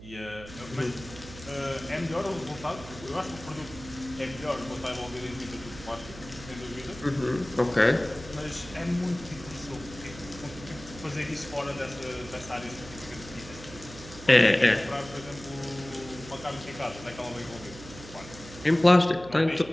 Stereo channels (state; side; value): noise; right; hum, 16 dB below the sound